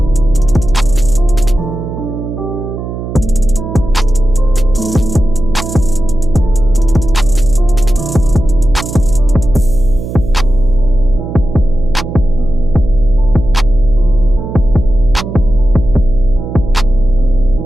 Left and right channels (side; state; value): right; noise; hum, 8 dB below the sound